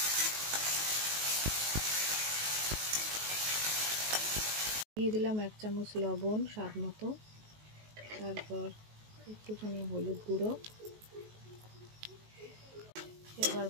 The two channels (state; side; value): late; left; 19 ms